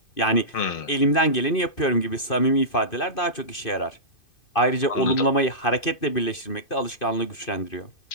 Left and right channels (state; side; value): late; right; 2.5 ms